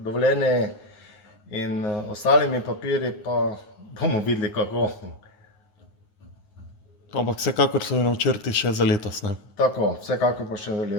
in ostalimi papirji, pa bomo videli kako. Ampak vsekakor so načrti še za letos, ne? Tako, vsekakor pa še za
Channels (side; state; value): right; late; 9.5 ms